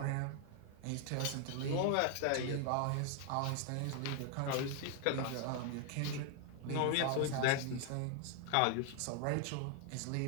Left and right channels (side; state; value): both; different; correlation 0.00